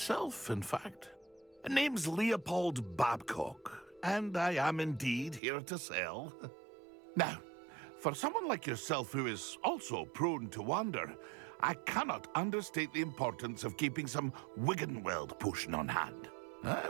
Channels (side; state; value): left; drops out; at 5.4 s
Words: in fact. Name's Leopold Babcock, and I am indeed here to sell. Now, for someone like yourself who is also prone to wander, I cannot understate the importance of keeping some Wiggenweld potion on hand. I